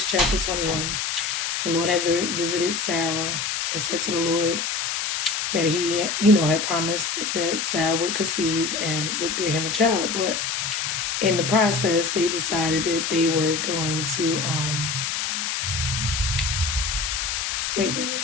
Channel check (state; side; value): noise; left; hiss, 1 dB below the sound